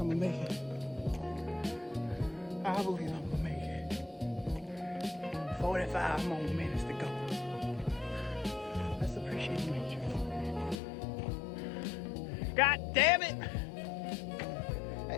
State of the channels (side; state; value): right; drops out; at 10.8 s